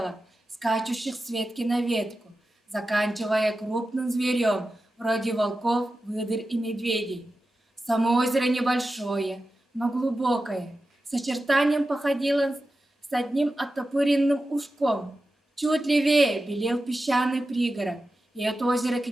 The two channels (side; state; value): both; normal; correlation 0.93